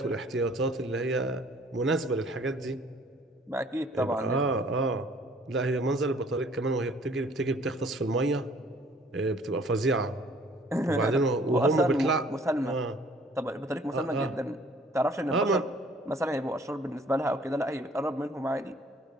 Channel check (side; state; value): both; normal; correlation 0.56